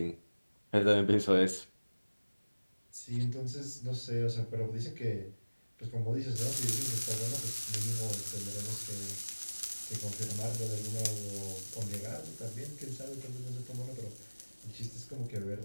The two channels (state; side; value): inverted; both; correlation -1.00